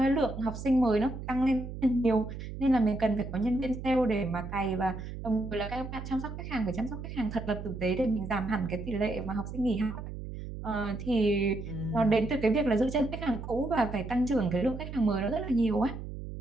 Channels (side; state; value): right; noise; hum, 9 dB below the sound